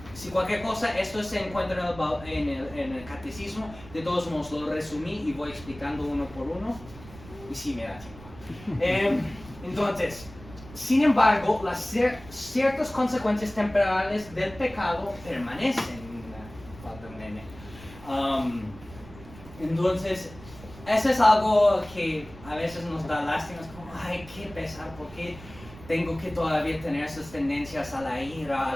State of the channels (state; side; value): noise; right; rumble, 18 dB below the sound